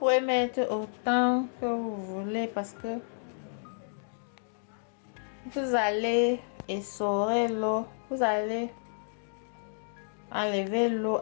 mettre autant que vous voulez parce que vous allez essorer l'eau. Vous allez enlever l'eau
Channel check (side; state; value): right; silent; digital silence